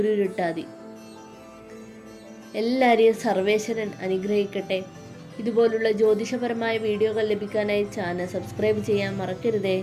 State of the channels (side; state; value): both; identical; correlation 1.00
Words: എല്ലാവരെയും സർവേശ്വരൻ അനുഗ്രഹിക്കട്ടെ. ഇതുപോലുള്ള ജ്യോതിഷപരമായ വീഡിയോകൾ ലഭിക്കാനായി ചാനൽ സബ്സ്ക്രൈബ് ചെയ്യാൻ മറക്കരുതേ.